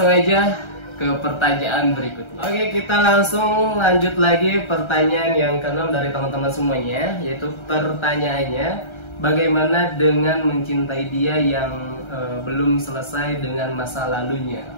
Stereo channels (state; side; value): late; right; 1.3 ms